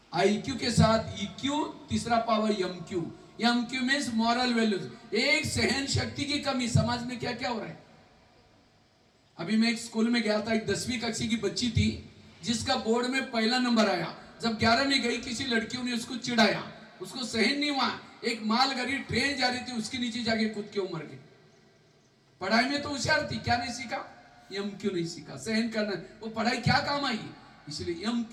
आईक्यू के साथ ईक्यू, तीसरा power MQ. MQ means moral values. एक सहन शक्ति की कमी, समाज में क्या क्या हो रहा है। अभी मैं एक स्कूल में गया था, एक 10वीं कक्षा की बच्ची थी जिसका बोर्ड में पहला नंबर आया। जब 11 में गई, किसी लड़कियों ने उसको चिढ़ाया, उसको सहन नहीं हुआ। एक मालगाड़ी ट्रेन जा रही थी, उसके नीचे जाके कूद के मर गई। पढ़ाई में तो होशियार थी, क्या नहीं सीखा? एमक्यू नहीं सीखा, सहन करना। वो पढ़ाई क्या काम आई? इसलिए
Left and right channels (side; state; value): both; identical; correlation 1.00